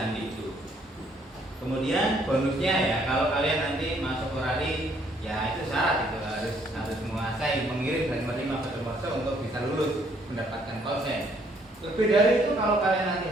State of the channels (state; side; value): normal; both; correlation 0.66